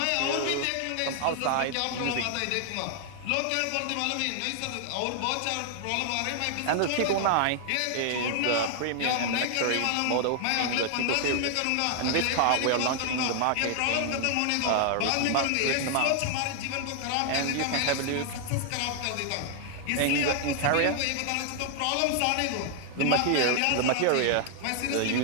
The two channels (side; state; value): both; different; correlation 0.00